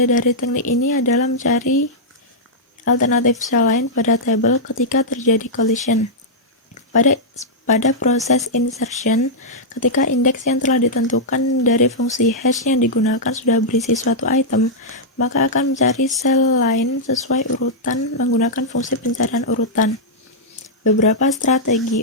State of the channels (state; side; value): normal; both; correlation -0.08